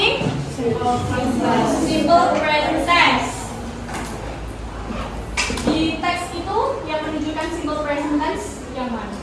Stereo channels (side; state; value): both; identical; correlation 1.00